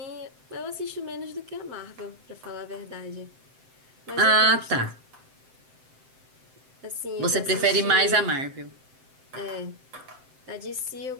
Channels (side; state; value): left; late; 7.7 ms